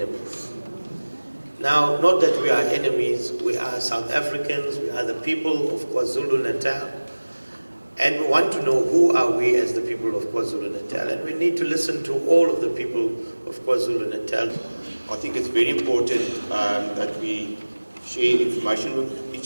Now, not that we are enemies, we are South Africans, we are the people of KwaZulu-Natal, and we want to know who are we as the people of KwaZulu-Natal, and we need to listen to all of the people of KwaZulu-Natal. I think it's very important that we share information with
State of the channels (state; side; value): inverted; both; correlation -1.00